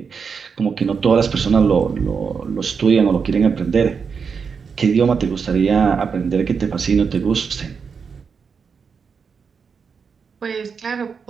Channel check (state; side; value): quieter; left; 5.9 dB